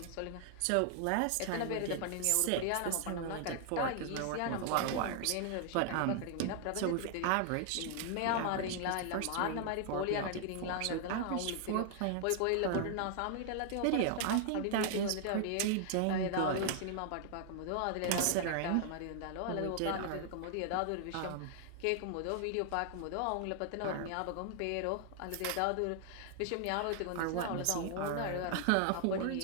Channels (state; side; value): different; both; correlation 0.00